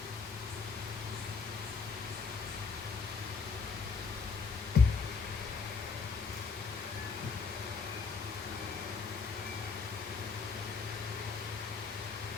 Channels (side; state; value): right; quieter; 5.0 dB